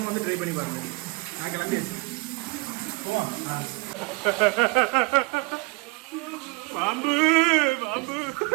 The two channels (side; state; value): left; quieter; 27.0 dB